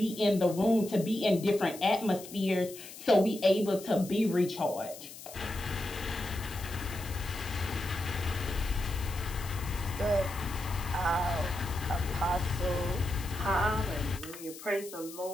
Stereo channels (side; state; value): left; noise; hiss, 15 dB below the sound